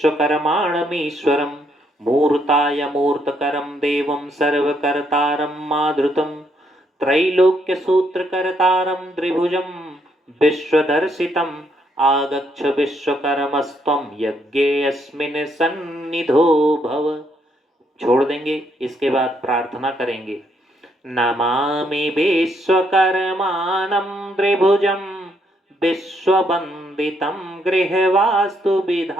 मूर्ताय मूर्तकरं देवं सर्वकर्तारं माधृतं त्रैलोक्य सूत्रकर्तारं त्रिभुजं विश्वदर्शितम् आगच्छ विश्वकर्मस्त्वं यज्ञेऽस्मिन् सन्निधो भव। छोड़ देंगे। इसके बाद प्रार्थना करेंगे नमामि विश्वकर्मानं त्रिभुजं विश्ववन्दितं गृहवास्तु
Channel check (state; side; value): normal; both; correlation 0.74